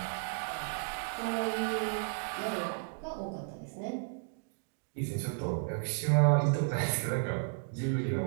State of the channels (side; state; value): left; silent; 55 dB below the other